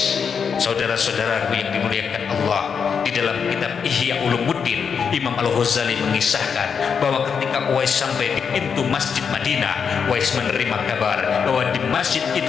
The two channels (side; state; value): right; quieter; 6.5 dB